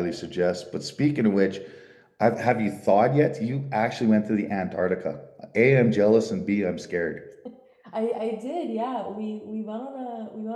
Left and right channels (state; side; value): identical; both; correlation 1.00